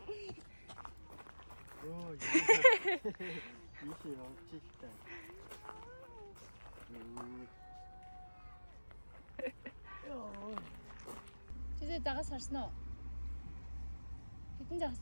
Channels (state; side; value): inverted; both; correlation -1.00